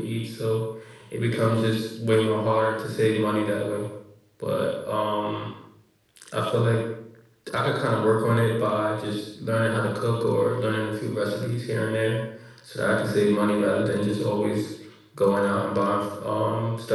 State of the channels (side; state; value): both; identical; correlation 1.00